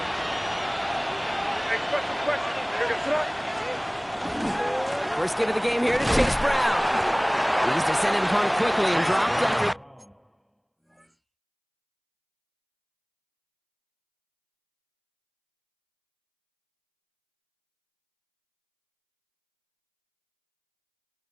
First give of the game here to Chase Brown. He's descended upon quickly and dropped after.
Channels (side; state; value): both; identical; correlation 1.00